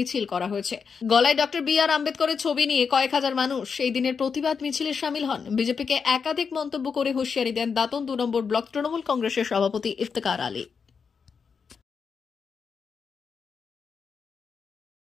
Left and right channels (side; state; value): right; quieter; 5.9 dB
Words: করা হয়েছে। গলায় ডক্টর বি.আর. আম্বেদকরের ছবি নিয়ে কয়েক হাজার মানুষ এই দিনের প্রতিবাদ মিছিলে শামিল হন। বিজেপিকে একাধিক মন্তব্য করে হুঁশিয়ারি দেন দাঁতন 2 নম্বর ব্লক তৃণমূল কংগ্রেসের সভাপতি ইফতেখার আলী।